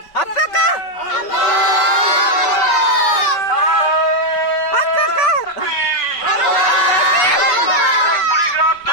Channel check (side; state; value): right; late; 5.6 ms